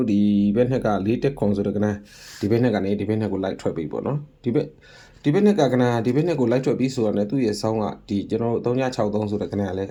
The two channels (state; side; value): identical; both; correlation 1.00